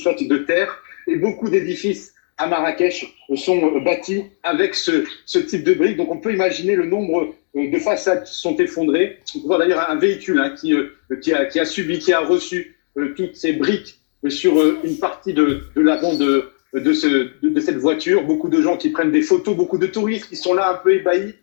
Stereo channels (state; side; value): silent; right; digital silence